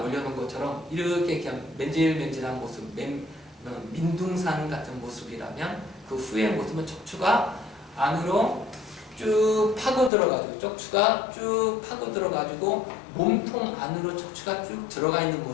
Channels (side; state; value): right; drops out; at 10.1 s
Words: 올려놓은 것처럼 이렇게 그냥 맨질맨질한 모습, 민둥산 같은 모습이라면 그 후의 모습은 척추가 안으로 쭉 파고 들어가지고 척추가 쭉 파고 들어가지고 몸통 안으로 척추가 쭉 들어가 있는